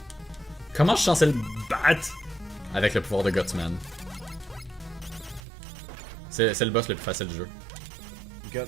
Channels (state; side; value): drops out; left; at 5.4 s